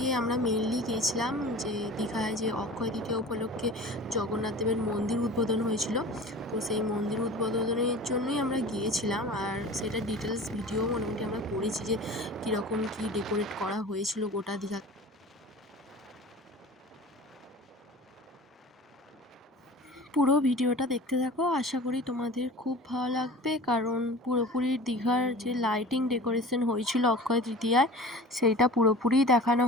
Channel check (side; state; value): both; normal; correlation 0.39